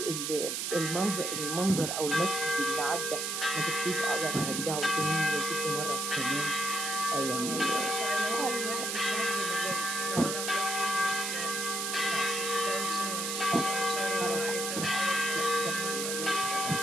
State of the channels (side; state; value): right; noise; hiss, 2 dB below the sound